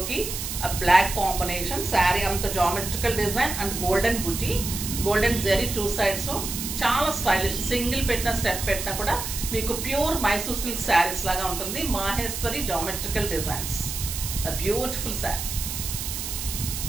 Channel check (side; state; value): right; noise; hiss, 5 dB below the sound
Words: బ్లాక్ కాంబినేషన్. శారీ అంత geometrical design and golden buti, golden zari 2 sides. చాలా స్టైలిష్. సింగిల్ పెట్టిన స్టెప్ పెట్టినా కూడా మీకు ప్యూర్ మైసూర్ సిల్క్ శారీస్ లాగా ఉంటుంది. Maheshwari geometrical designs. Beautiful sari.